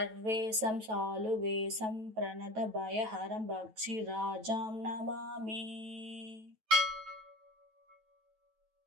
शालुवेशं प्रणतभयहरं भक्षिराजां नमामि।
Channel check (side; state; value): left; late; 9.2 ms